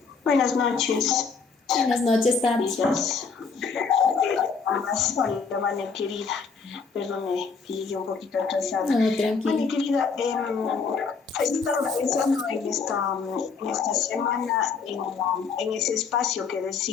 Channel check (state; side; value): quieter; right; 5.2 dB